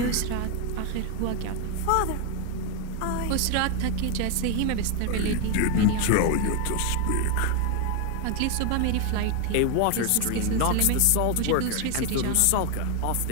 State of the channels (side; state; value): both; different; correlation 0.01